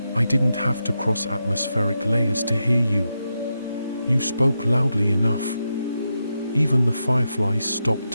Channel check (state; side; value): inverted; both; correlation -0.87